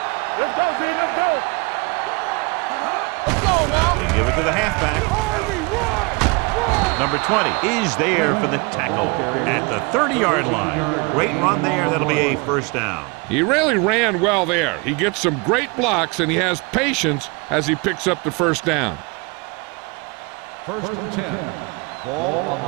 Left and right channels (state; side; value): quieter; left; 28.5 dB